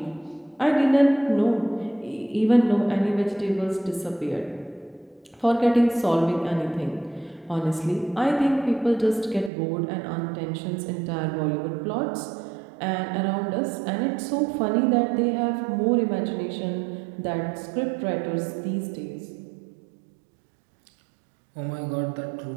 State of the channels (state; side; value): drops out; left; at 9.5 s